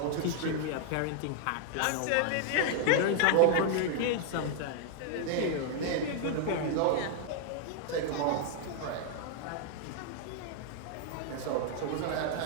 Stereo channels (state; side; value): different; both; correlation 0.00